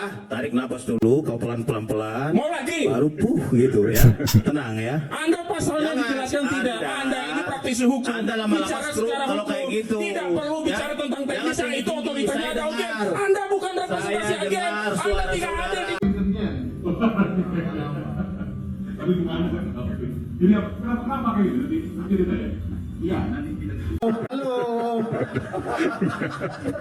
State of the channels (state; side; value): identical; both; correlation 1.00